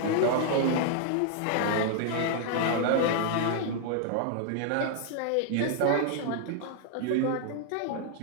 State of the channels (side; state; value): both; different; correlation 0.00